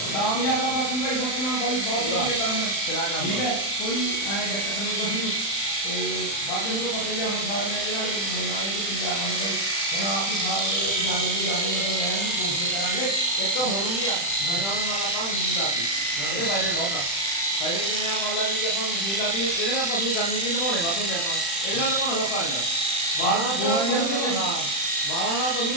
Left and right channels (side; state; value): right; late; 35 ms